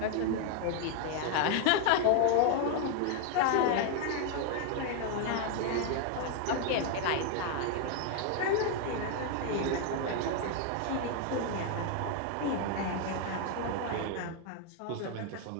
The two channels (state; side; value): different; both; correlation 0.00